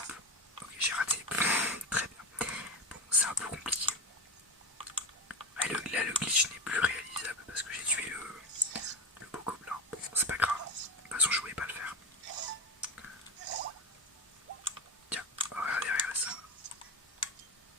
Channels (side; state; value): both; normal; correlation 0.19